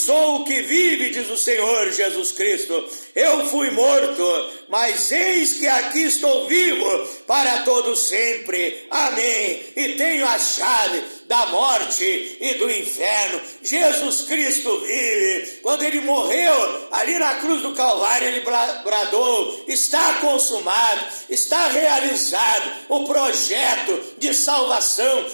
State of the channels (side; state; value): both; inverted; correlation -1.00